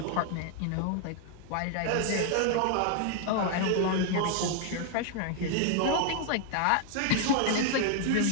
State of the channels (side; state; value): both; different; correlation 0.00